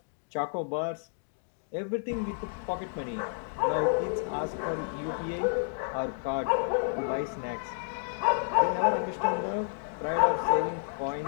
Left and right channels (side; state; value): right; silent; digital silence